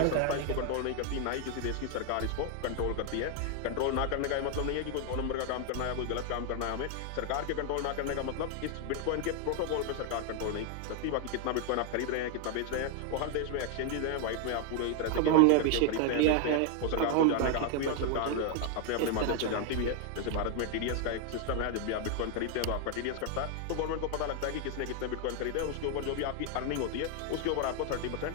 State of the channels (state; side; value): different; both; correlation 0.00